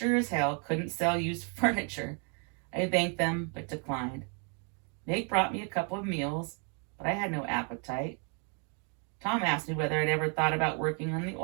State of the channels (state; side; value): quieter; left; 38.8 dB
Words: as hell couldn't sell used furniture. I thanked them, but declined. Meg brought me a couple of meals, but I had no appetite. Tom asked me whether I'd ever thought about working on the